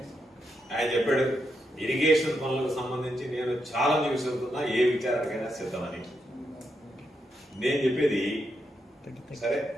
ఆయన చెప్పాడు ఇరిగేషన్ పనులకు సంబంధించి నేను ఛాలెంజ్ విసురుతున్నా, ఏ విచారణకైనా సిద్ధమని. నేను చెప్పేది సరే,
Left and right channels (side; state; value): both; normal; correlation 0.82